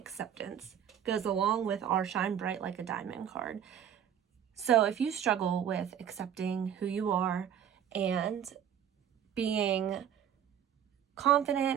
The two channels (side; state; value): left; quieter; 9.4 dB